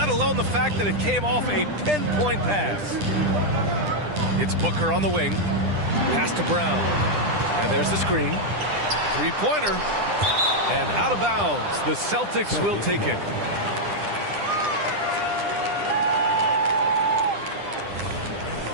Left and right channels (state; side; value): late; left; 9.9 ms